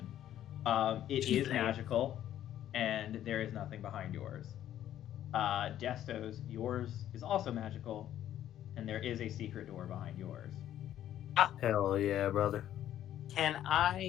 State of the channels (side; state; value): right; quieter; 11.7 dB